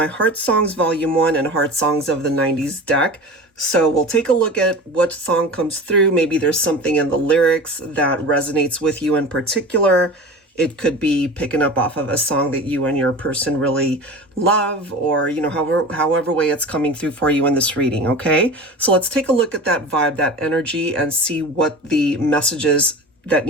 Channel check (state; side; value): normal; both; correlation 0.34